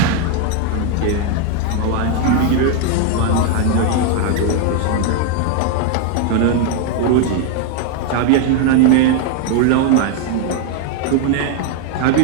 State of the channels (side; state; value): both; different; correlation 0.00